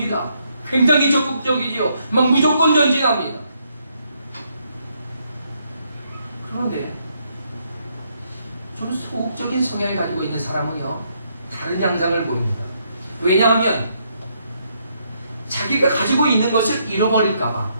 굉장히 적극적이지요. 막 무조건 전진합니다. 그런데 좀 소극적인 성향을 가지고 있는 사람은요, 다른 양상을 보입니다. 왜냐하면 자기가 가지고 있는 것을 잃어버릴까봐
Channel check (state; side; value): inverted; both; correlation -0.74